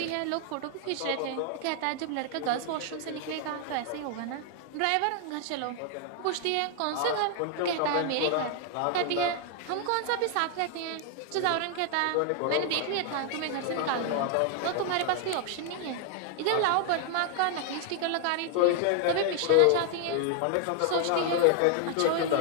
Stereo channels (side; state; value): both; different; correlation 0.00